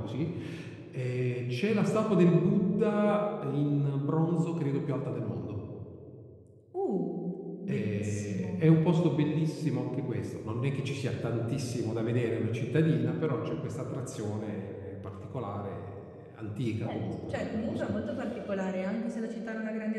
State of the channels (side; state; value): both; identical; correlation 1.00